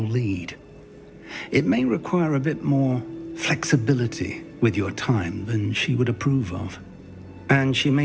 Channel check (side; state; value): both; identical; correlation 1.00